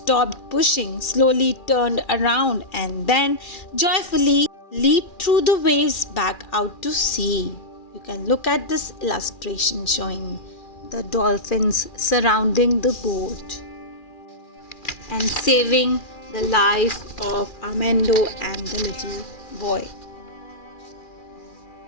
pushing, slowly turned around, and then joyfully leaped through the waves back out to sea. You can look at this illustration showing the dolphins surrounding the boat and saving the life of Armando and the little boy.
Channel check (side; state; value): right; late; 2.4 ms